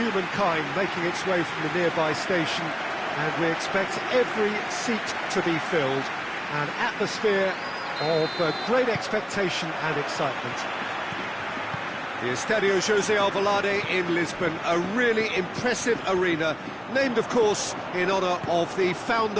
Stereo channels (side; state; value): both; identical; correlation 1.00